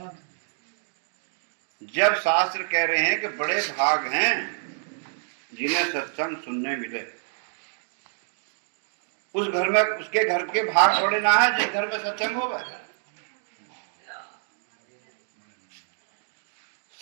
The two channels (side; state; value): left; silent; digital silence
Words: जब शास्त्र कह रहे हैं कि बड़े भाग हैं जिन्हें सत्संग सुनने मिले, उस घर में उसके घर के भाग बड़े ना है जिस घर में सत्संग होगा।